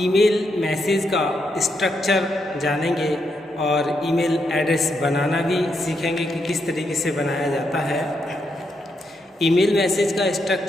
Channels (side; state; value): both; normal; correlation 0.80